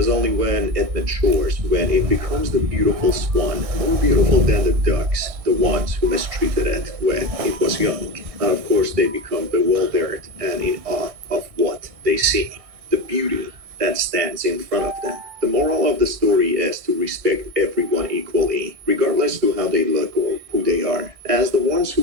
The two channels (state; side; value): late; left; 1.6 ms